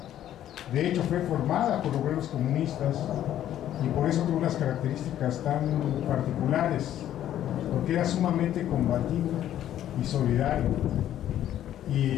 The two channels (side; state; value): right; quieter; 11.7 dB